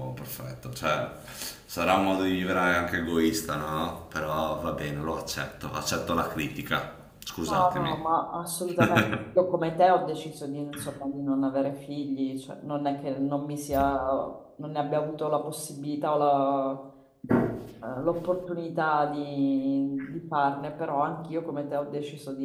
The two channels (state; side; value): identical; both; correlation 1.00